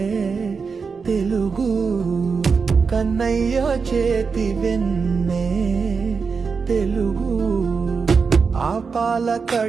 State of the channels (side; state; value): left; quieter; 5.3 dB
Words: తెలుగు కన్నయ్య చేతి వెన్నే తెలుగు ఆపాల